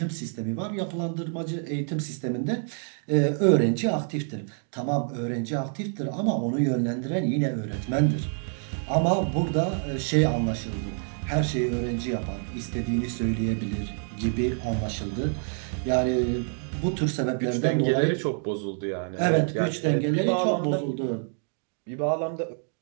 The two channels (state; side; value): silent; left; 58 dB below the other